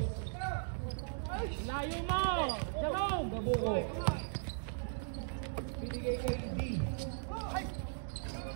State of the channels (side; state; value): left; silent; digital silence